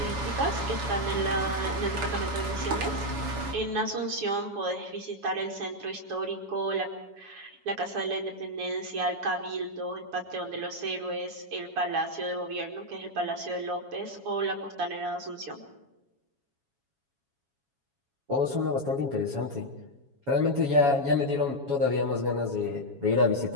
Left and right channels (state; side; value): late; left; 7.2 ms